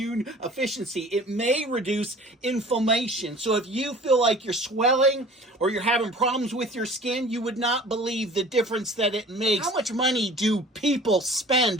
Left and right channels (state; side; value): normal; both; correlation 0.45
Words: efficiency. It may reduce inflammation. So if you feel like you're swelling or you're having problems with your skin, you would not believe the difference that it makes. How much money do people